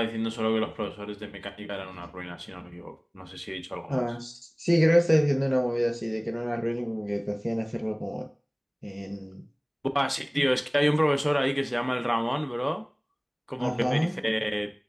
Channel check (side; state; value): both; identical; correlation 1.00